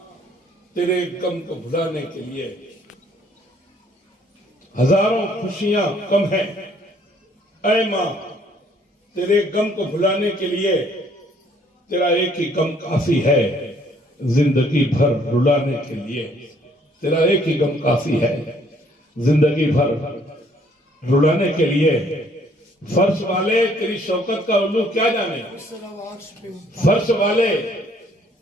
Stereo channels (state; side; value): normal; both; correlation 0.63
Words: تیرے غم کو بھلانے کے لیے. ہزاروں خوشیاں کم ہیں اے ماں تیرے غم کو بھلانے کے لیے. تیرا ایک ہی غم کافی ہے زندگی بھر رلانے کے لیے. تیرا ایک ہی غم کافی ہے زندگی بھر رلانے کے لیے. فرش والے تیری شوکت کا علو کیا جانے, فرش والے